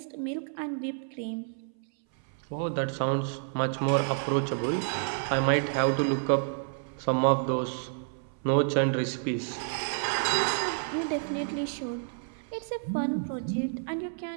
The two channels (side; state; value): left; silent; 58 dB below the other